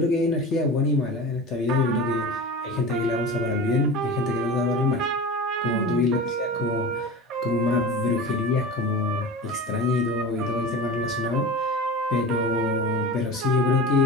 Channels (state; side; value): normal; both; correlation 0.31